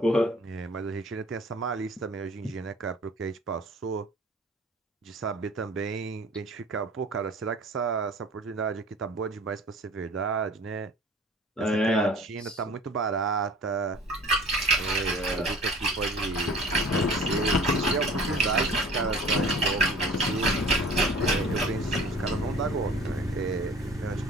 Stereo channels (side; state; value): both; normal; correlation 0.46